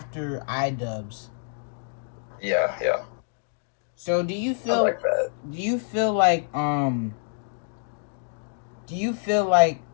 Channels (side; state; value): right; silent; digital silence